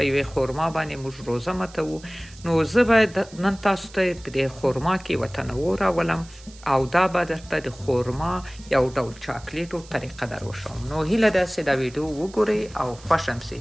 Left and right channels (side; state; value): right; noise; hiss, 22 dB below the sound